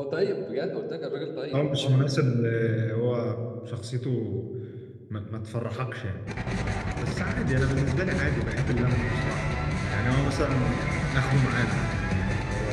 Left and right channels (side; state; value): both; identical; correlation 1.00